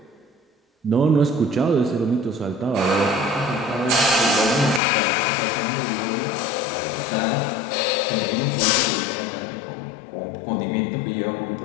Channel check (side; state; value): right; drops out; at 4.8 s